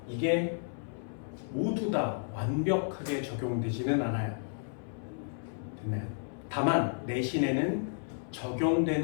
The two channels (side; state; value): right; silent; 56 dB below the other